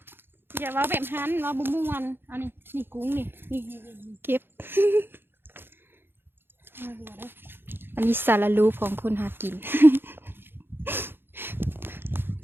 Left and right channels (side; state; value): left; late; 0.10 ms